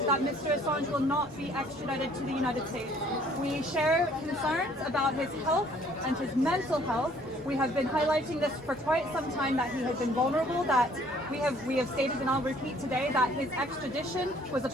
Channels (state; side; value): normal; both; correlation 0.59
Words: that Mr. Assange will not be extradited to the United States. We share concerns about his health and his mental health. We have been highlighting this for quite some time, that he has been vulnerable, that we have stated, and I'll repeat today, that his extradition was a